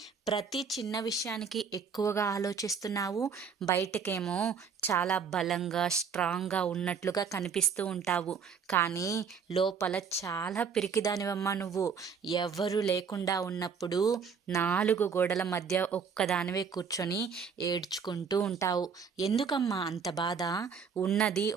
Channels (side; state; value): left; quieter; 6.2 dB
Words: ప్రతి చిన్న విషయానికి ఎక్కువగా ఆలోచిస్తున్నావు? బయటకేమో చాలా బలంగా, స్ట్రాంగ్గా ఉన్నట్లుగా కనిపిస్తూ ఉంటావు, కానీ లోపల చాలా పిరికిదానివమ్మా నువ్వు. ఎవరు లేకుండా ఉన్నప్పుడు 4 గోడల మధ్య ఒక్కదానివే కూర్చొని ఏడ్చుకుంటూ ఉంటావు. ఎందుకమ్మా అంత బాధ? ఉన్నది